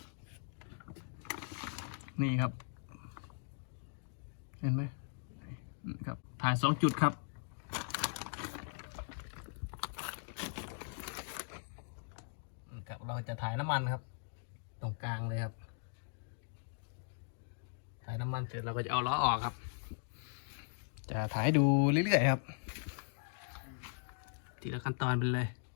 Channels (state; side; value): silent; right; digital silence